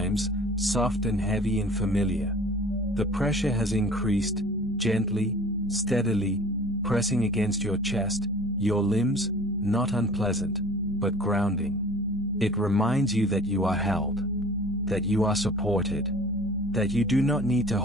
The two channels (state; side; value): normal; both; correlation 0.45